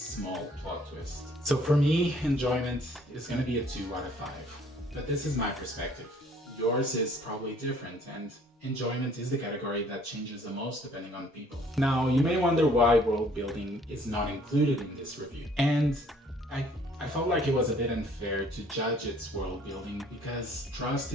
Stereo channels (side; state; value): both; normal; correlation 0.59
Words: plot twist. So for me, enjoyment is going to be a 2 out of 5. But this is my perspective. Yours is probably different, and enjoyment is the category that changes the most depending on people. Now, you may wonder why world building is not included in this review. And I felt like it was a bit unfair to judge its world building because Trust